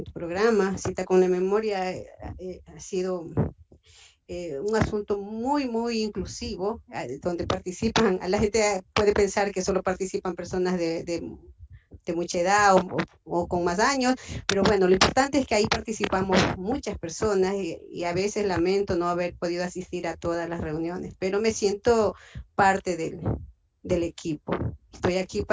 programa. Cita con la Memoria ha sido un asunto muy inclusivo, donde participan, la gente puede pensar que solo participan personas de mucha edad o con más años, pero bueno, lo importante es que ahí participamos muchas personas y a veces lamento no haber podido asistir a todas las reuniones, pero me siento parte del equipo. Estoy aquí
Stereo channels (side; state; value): both; identical; correlation 1.00